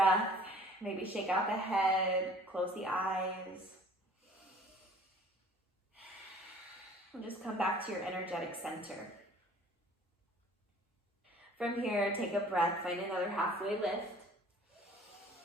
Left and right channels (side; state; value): both; normal; correlation 0.52